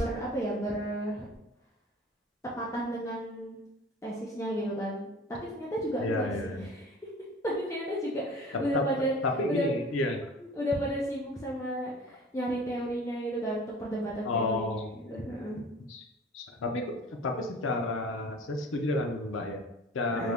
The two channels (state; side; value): normal; both; correlation 0.43